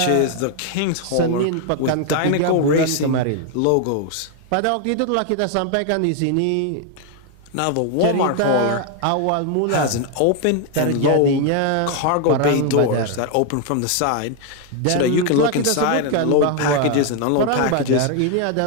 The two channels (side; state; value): both; different; correlation 0.01